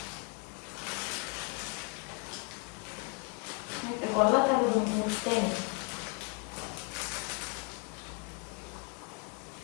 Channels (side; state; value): right; quieter; 37.3 dB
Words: ಮತ್ತೆ ಕೊಲ್ಲ ತರದು ಮುಟ್ಟೇನೆ